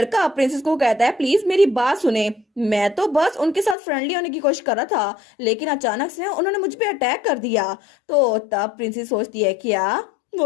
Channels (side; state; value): right; drops out; at 3.8 s